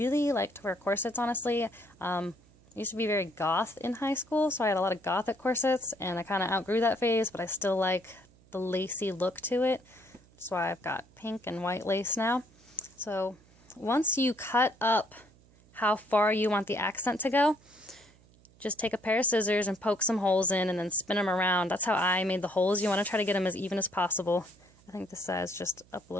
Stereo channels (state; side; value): noise; right; hum, 28 dB below the sound